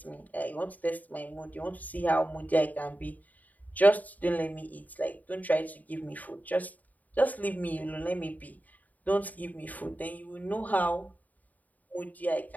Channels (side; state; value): right; late; 0.077 ms